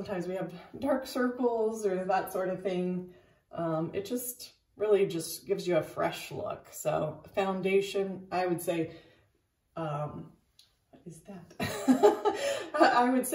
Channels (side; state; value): both; identical; correlation 1.00